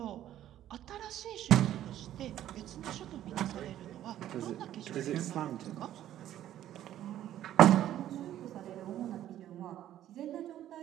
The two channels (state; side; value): quieter; left; 12.2 dB